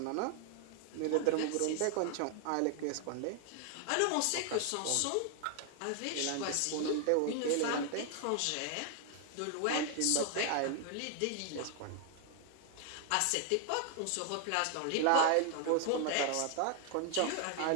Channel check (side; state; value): both; different; correlation 0.00